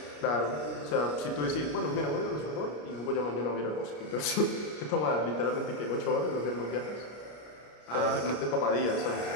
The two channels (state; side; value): late; right; 33 ms